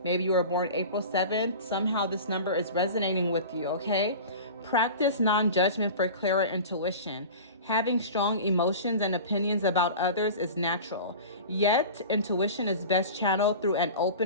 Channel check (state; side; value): inverted; both; correlation -0.35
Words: Maybe you were born April 7th. Somehow this number is resonating with you, okay? Practice non-judgment for clearer intuition. Having strong emotions and opinions about others is natural. Yet, intuition is best channeled through an